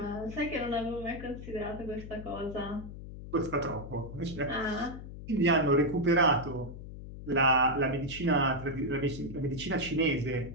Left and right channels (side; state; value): left; noise; hum, 11 dB below the sound